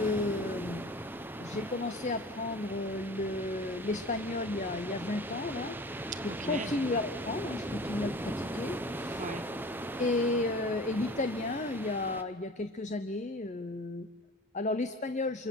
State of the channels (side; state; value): both; normal; correlation 0.40